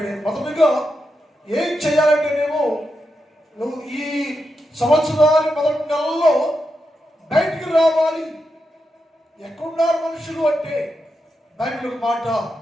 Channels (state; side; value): normal; both; correlation 0.86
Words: మొదటిగా ఏం చేయాలంటేనేమో నువ్వు ఈ సంవత్సరాలు మొదటి నెలలో బయటికి రావాలి. ఎక్కడున్నారు మనుషులు అంటే బైబిల్ మాట